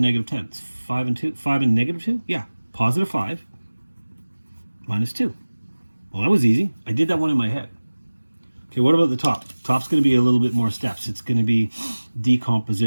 10. It's 5 and 2. 5 and negative 2? Yeah, positive 5 minus 2. Well, that was easy. I did that one in my head. Okay, what about the top? Top's going to be a little bit more steps. It's going to be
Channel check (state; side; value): inverted; both; correlation -1.00